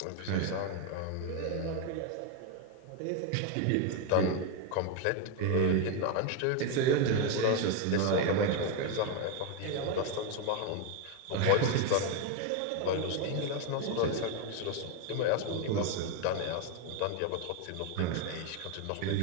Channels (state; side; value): different; both; correlation 0.02